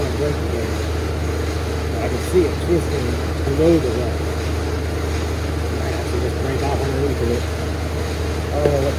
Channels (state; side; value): identical; both; correlation 1.00